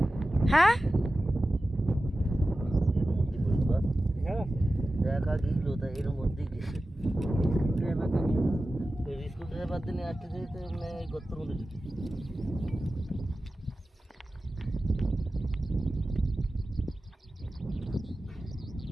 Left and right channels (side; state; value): both; normal; correlation 0.94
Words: হ্যাঁ এর মধ্যে স্কুল ড্রাইভার দিনে আসতে যেতে গর্তের মধ্যে